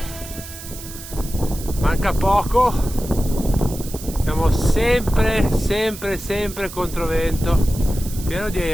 Manca poco, siamo sempre controvento, pieno di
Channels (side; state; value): right; noise; hiss, 13 dB below the sound